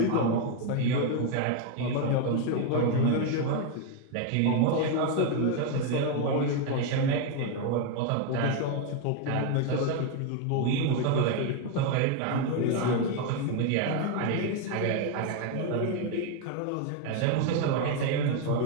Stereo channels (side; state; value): both; different; correlation 0.01